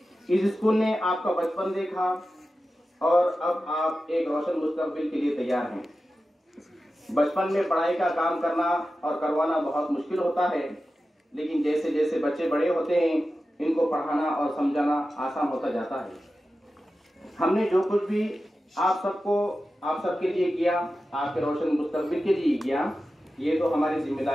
इस स्कूल ने आपका बचपन देखा और अब आप एक रोशन मुस्तकबिल के लिए तैयार हैं। बचपन में पढ़ाई का काम करना और करवाना बहुत मुश्किल होता है, लेकिन जैसे जैसे बच्चे बड़े होते हैं इनको पढ़ाना और समझाना आसान होता जाता है। हमने जो कुछ भी आप सबके लिए किया, आपके रोशन मुस्तकबिल के लिए किया, ये तो हमारी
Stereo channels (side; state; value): both; normal; correlation 0.93